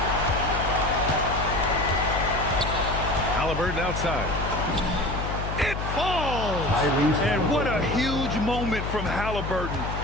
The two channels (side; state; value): left; noise; hum, 4 dB below the sound